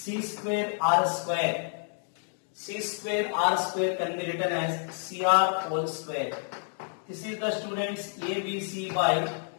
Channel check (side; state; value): right; silent; 58 dB below the other